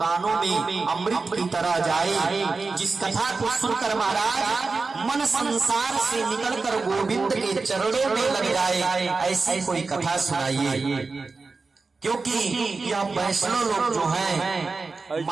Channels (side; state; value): left; quieter; 4.1 dB